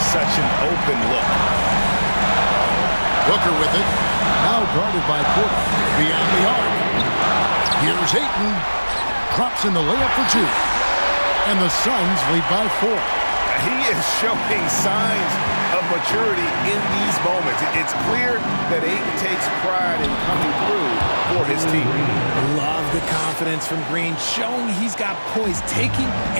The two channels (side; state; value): both; inverted; correlation -1.00